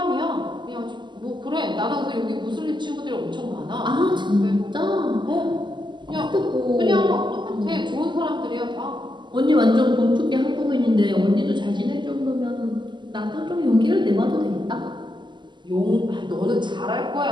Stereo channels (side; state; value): left; late; 0.22 ms